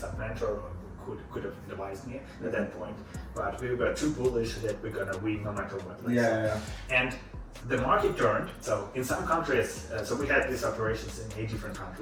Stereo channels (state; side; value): identical; both; correlation 1.00